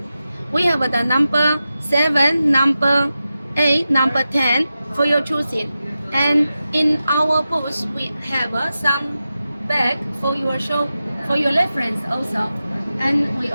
We have the number 7, number 8, number 10 for your choosing. And in our booth, we have some bag for your show, for your reference also. And we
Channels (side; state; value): both; inverted; correlation -0.92